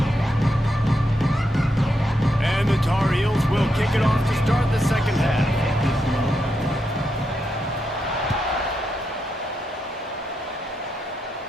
And the Tar Heels will kick it off to start the second half.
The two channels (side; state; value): both; normal; correlation 0.83